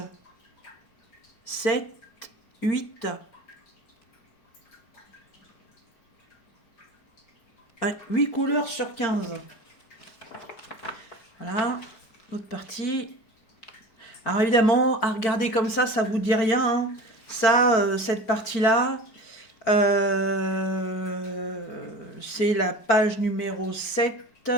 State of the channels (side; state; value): right; late; 4.5 ms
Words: 7, 8. Ouais, 8 couleurs sur 15. Voilà, l'autre partie. Alors évidemment, à regarder comme ça vous dit rien. Hein. Ça, cette partie-là, c'est la page numéro 7.